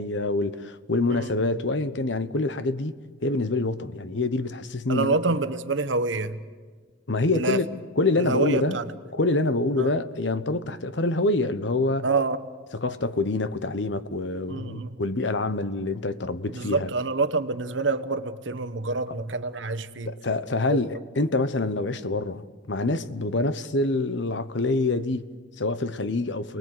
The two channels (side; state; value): both; normal; correlation 0.12